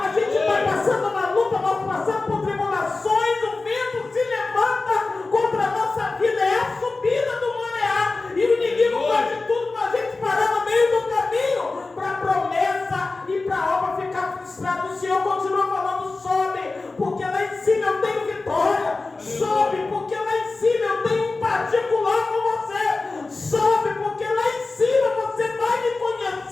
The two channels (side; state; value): right; quieter; 3.6 dB